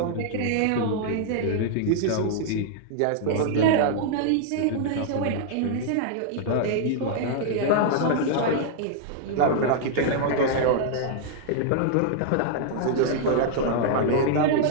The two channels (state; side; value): different; both; correlation -0.01